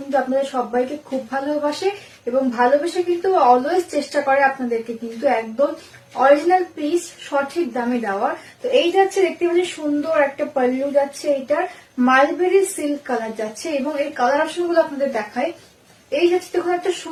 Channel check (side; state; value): both; identical; correlation 1.00